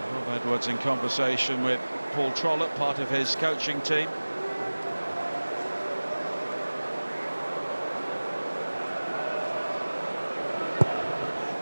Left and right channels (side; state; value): both; inverted; correlation -1.00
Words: Rob Edwards in conversation with Paul Trollope, part of his coaching team.